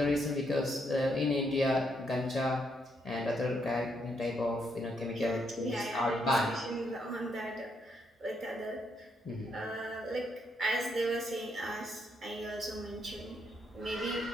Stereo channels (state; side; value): normal; both; correlation 0.76